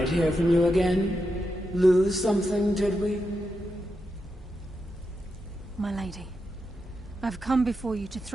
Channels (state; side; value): normal; both; correlation 0.86